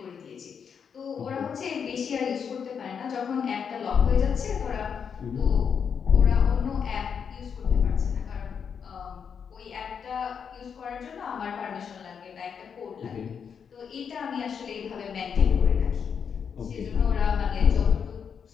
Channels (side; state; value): right; quieter; 6.9 dB